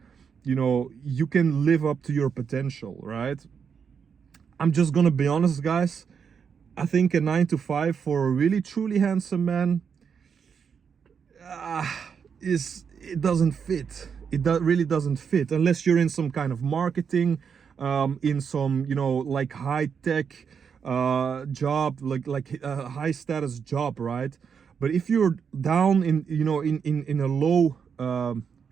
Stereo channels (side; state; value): left; quieter; 6.7 dB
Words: you can live up to your potential, right? I'm just gonna be honest, guys. I think a 9 to 5 for a really truly handsome man it doesn't fit. really doesn't fit unless you're in some kind of marketing, in some, you know, like high tech job, like a high status job, right? But if you're down in, you know, in a low